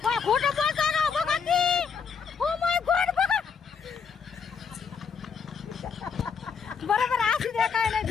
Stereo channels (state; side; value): quieter; right; 6.1 dB